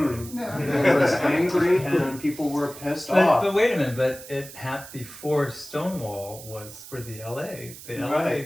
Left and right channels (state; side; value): noise; right; hiss, 15 dB below the sound